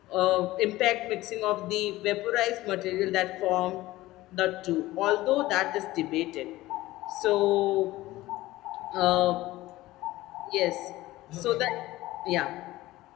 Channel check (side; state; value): right; quieter; 17.5 dB